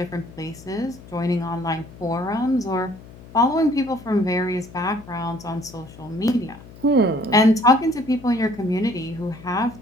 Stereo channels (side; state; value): left; noise; hum, 19 dB below the sound